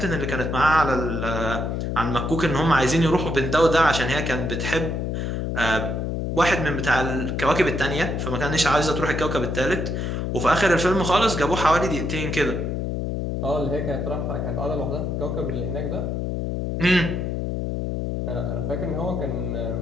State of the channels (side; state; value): left; noise; hum, 2 dB below the sound